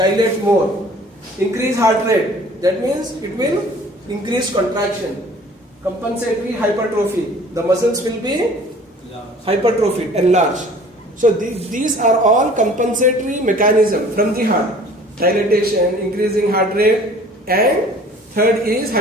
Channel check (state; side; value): normal; both; correlation 0.50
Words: more. Increase heart rate, that means it will increase contraction. Compensatory hypertrophy, the muscles will be hypertrophied, enlarged. So these are all compensatory mechanism from the heart. Dilatation, increasing heart rate, and third is